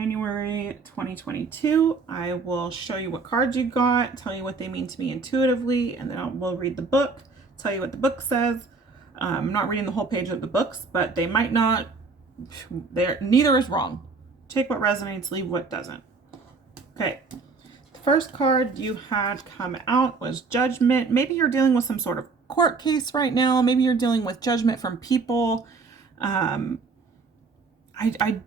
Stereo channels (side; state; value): left; quieter; 4.3 dB